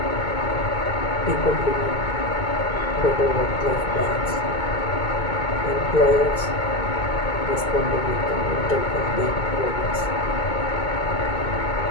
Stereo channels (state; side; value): late; right; 2.2 ms